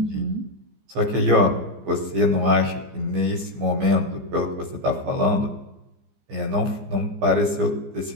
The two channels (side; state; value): left; late; 15 ms